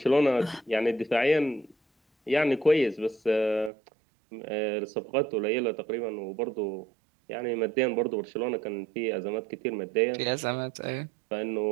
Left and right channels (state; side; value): drops out; left; at 3.7 s